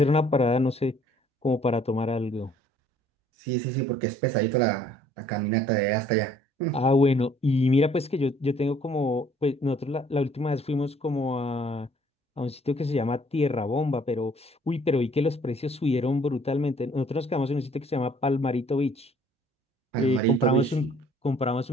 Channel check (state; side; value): normal; both; correlation 0.59